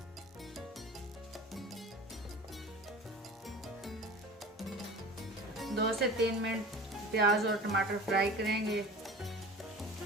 2 से 3 मिनट प्याज और टमाटर फ्राई करेंगे।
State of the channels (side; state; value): both; normal; correlation 0.39